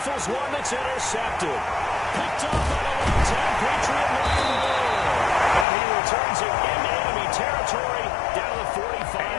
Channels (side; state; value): right; drops out; at 5.7 s